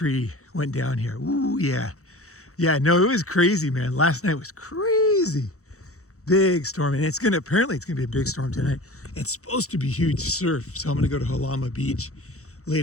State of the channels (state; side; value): late; right; 0.65 ms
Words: went down here. Ooh, yeah. Yeah, no, it was crazy, man. Last night was crazy. Big storm, and apparently it's gonna be a big storm tonight. It's supposed to be huge surf, so I'm gonna go to Halama Beach